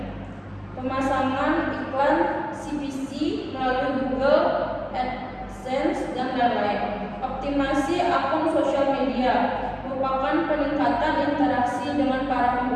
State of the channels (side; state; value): both; identical; correlation 1.00